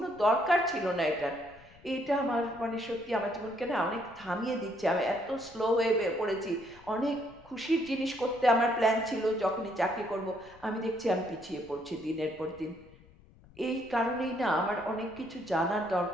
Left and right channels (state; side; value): noise; left; rumble, 24 dB below the sound